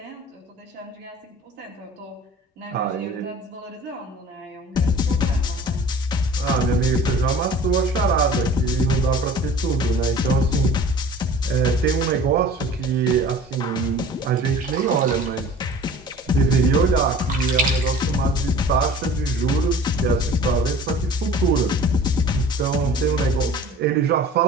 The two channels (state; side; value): normal; both; correlation 0.44